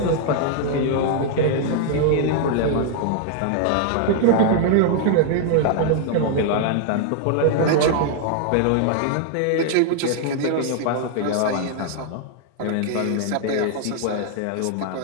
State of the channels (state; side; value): different; both; correlation 0.00